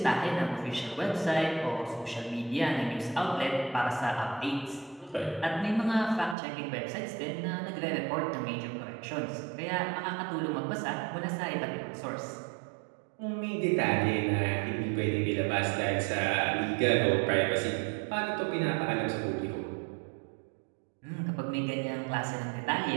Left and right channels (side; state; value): left; drops out; at 6.4 s